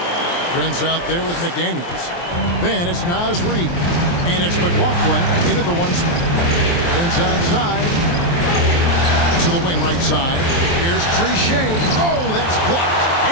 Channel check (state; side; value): late; right; 23 ms